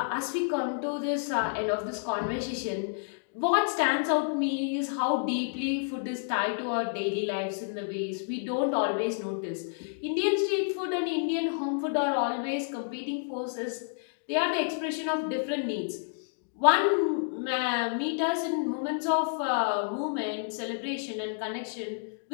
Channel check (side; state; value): right; silent; digital silence